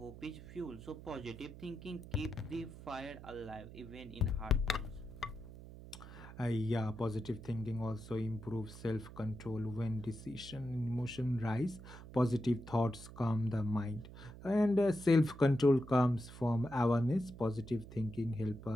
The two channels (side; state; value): right; noise; hum, 15 dB below the sound